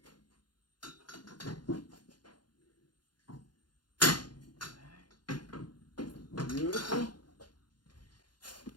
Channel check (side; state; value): right; late; 0.71 ms